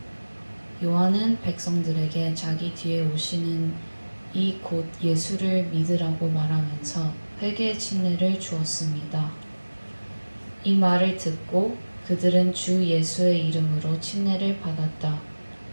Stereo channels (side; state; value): both; inverted; correlation -1.00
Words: 요한은 백성들에게 자기 뒤에 오시는 이 곧 예수를 믿으라고 말하면서 회개의 침례를 주었습니다. 이 말을 듣고 그들은 주 예수의 이름으로 침례를 받았다.